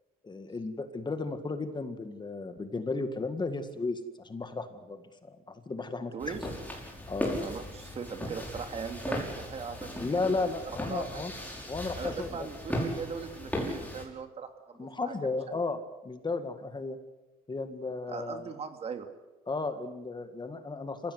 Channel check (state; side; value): normal; both; correlation 0.65